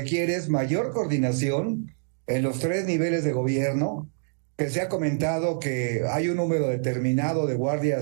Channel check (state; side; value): silent; left; digital silence